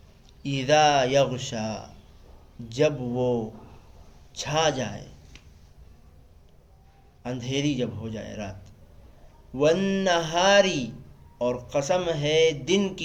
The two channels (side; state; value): both; identical; correlation 1.00